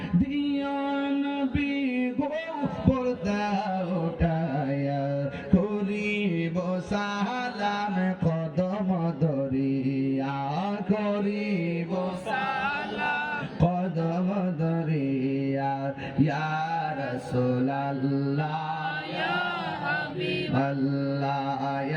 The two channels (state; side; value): identical; both; correlation 1.00